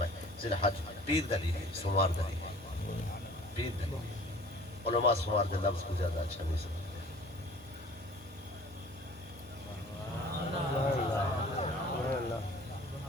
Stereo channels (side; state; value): both; normal; correlation 0.48